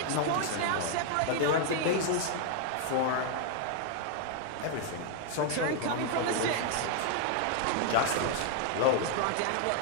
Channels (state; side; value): different; both; correlation 0.00